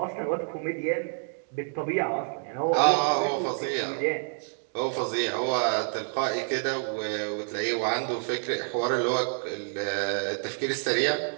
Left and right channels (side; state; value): left; silent; 59 dB below the other